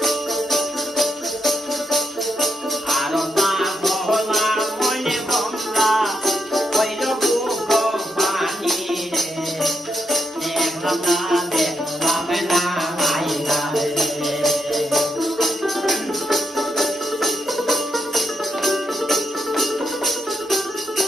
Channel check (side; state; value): both; normal; correlation 0.81